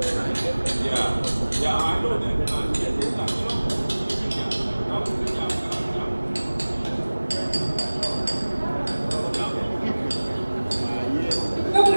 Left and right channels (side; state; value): both; inverted; correlation -1.00